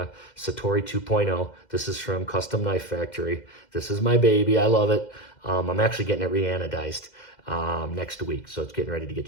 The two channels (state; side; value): late; right; 2.1 ms